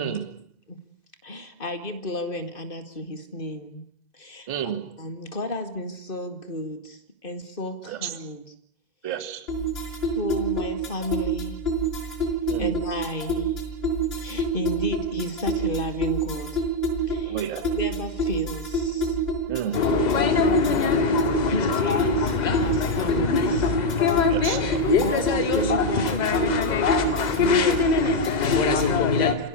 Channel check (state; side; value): late; right; 2.0 ms